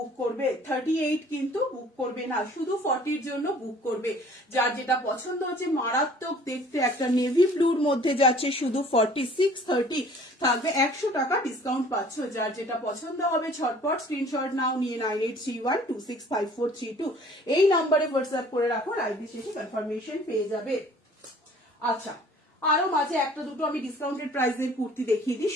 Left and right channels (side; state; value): both; normal; correlation 0.52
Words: করবে, 38 কিন্তু বুক করবে না, শুধু 40 জন্য বুক করবে। যার যেটা পছন্দ হচ্ছে, মারাত্মক দেখতে একটা নেভি ব্লুর মধ্যে যাচ্ছে, শুধু 630 থাকবে, 100 টাকা ডিসকাউন্ট পাচ্ছ। যার যেটা পছন্দ হবে ঝটপট স্ক্রিনশট নাও, নিয়ে 9831265432 এই নাম্বারে হোয়াটসঅ্যাপ করে রাখো, লাইভে শেষে কনফার্মেশন পেয়ে যাবে। আচ্ছা, আরো মাঝে একটা দুটো আমি ডিসকাউন্টেড প্রাইসের কুর্তি দেখিয়ে দিই।